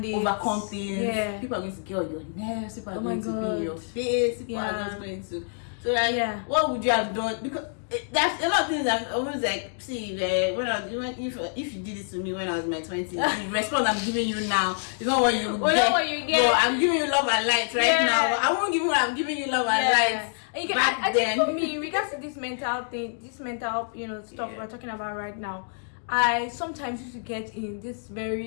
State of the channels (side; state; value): right; silent; digital silence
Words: it, overcome things. People are going to get on your nerves, people are going to be in your face, people are just going to, so like what would you have done? Because there's a lot of things I'm always like, see, when I was, even if you did this to me when I was in my 20s, the response I'm giving you now is not what you get. What you get. But I'm giving you love and light right now. I won't give you what I'm giving you love and light. And I think for me, in regards to this mental thing, stuff we're talking about right now, I sometimes used to get in this